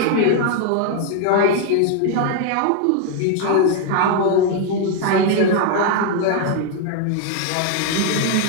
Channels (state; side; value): different; both; correlation 0.01